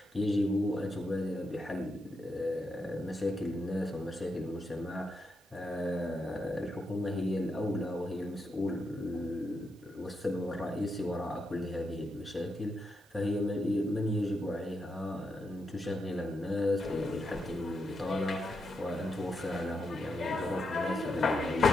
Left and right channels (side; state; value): both; normal; correlation 0.84